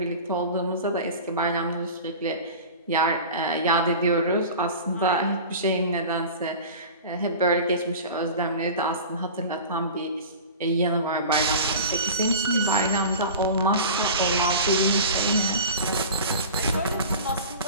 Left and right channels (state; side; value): inverted; both; correlation -0.36